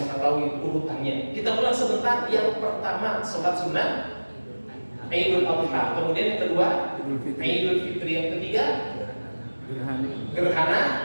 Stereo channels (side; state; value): both; inverted; correlation -1.00